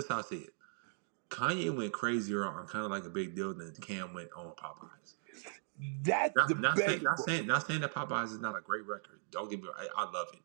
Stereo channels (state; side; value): silent; left; digital silence